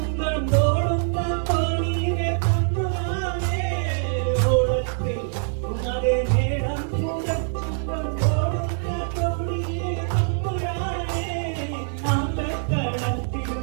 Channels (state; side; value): silent; left; 62 dB below the other